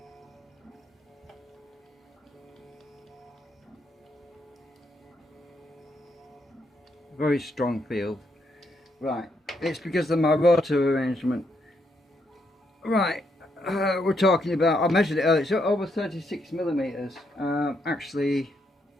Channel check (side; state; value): both; normal; correlation 0.77